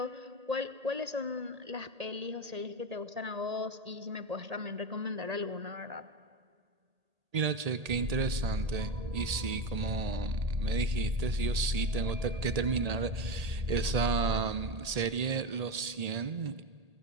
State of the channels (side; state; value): left; late; 1.8 ms